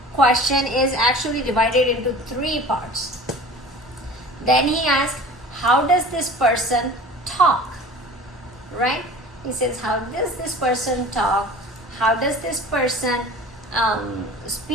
question is actually divided into 3 parts. Then he asks, how does this person talk? Right? He says, how does this person talk? How does this person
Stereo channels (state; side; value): normal; both; correlation 0.41